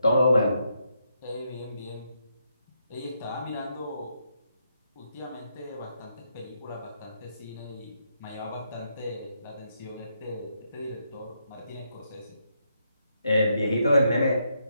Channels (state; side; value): inverted; both; correlation -0.79